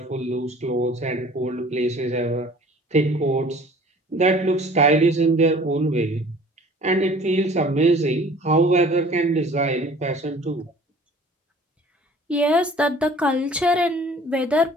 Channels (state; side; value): normal; both; correlation 0.49